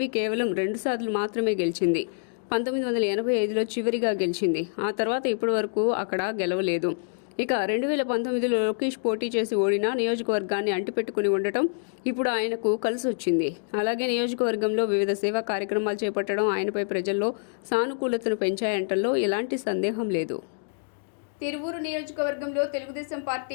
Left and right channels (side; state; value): right; silent; digital silence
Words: కేవలం 2 సార్లు మాత్రమే గెలిచింది. 1985లో చివరిగా గెలిచింది. ఆ తర్వాత ఇప్పటి వరకు అక్కడ గెలవలేదు. ఇక 2019లో లోకేష్ పోటీ చేసి ఓడిన నియోజకవర్గాన్ని అంటిపెట్టుకుని ఉండటం ఇప్పుడు ఆయనకు కలిసొచ్చింది. అలాగే నియోజకవర్గంలో వివిధ సేవా కార్యక్రమాలు చేపట్టడం ఆయనపై ప్రజల్లో సానుకూలతను పెంచాయంటల్లో ఎలాంటి సందేహం లేదు. తిరువూరు నియోజకవర్గంలో తెలుగుదేశం